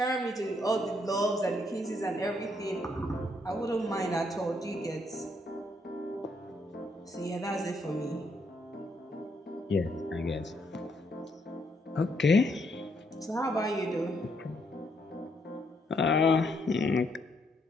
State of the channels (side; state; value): both; normal; correlation 0.74